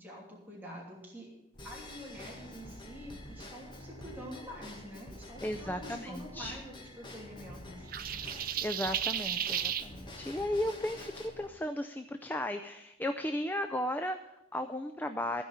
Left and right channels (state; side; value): normal; both; correlation 0.52